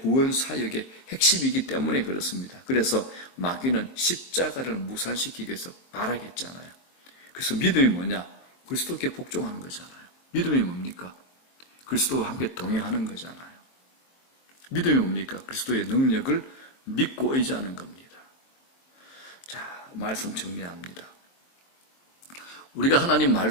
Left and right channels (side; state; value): right; late; 23 ms